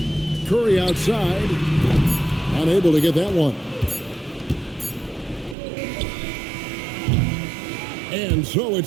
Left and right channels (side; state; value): left; drops out; at 5.6 s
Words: Curry outside. Unable to get that one. And so